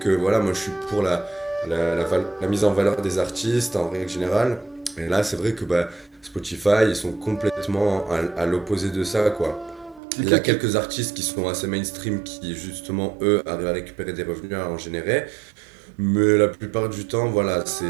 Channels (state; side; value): drops out; left; at 10.0 s